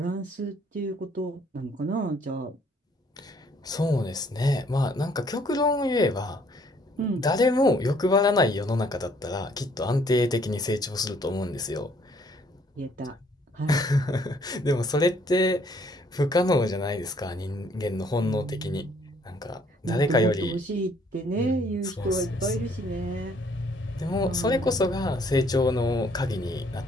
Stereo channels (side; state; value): both; normal; correlation 0.63